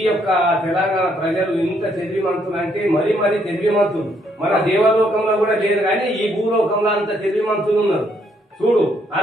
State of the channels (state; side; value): normal; both; correlation 0.71